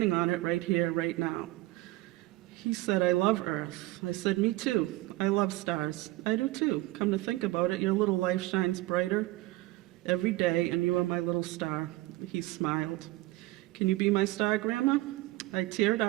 on it right here, right now. He said, I love Earth. I said, me too. I love stars. I do too. Come to think about it, your little life shines brighter every day, and you are my little star. He smiled. Can you be my star, Grandma? I teared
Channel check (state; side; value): quieter; left; 19.2 dB